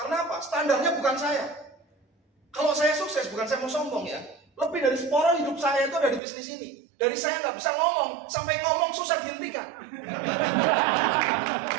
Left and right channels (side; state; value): left; drops out; at 6.2 s